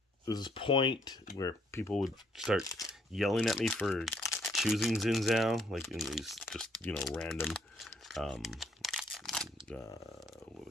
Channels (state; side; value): normal; both; correlation 0.67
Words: this point where people would start yelling at me for choosing Xin Zhao, like in these just random what